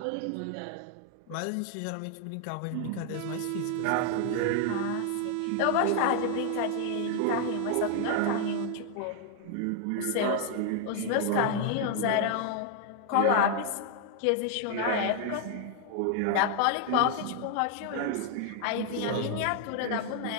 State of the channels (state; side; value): different; both; correlation 0.00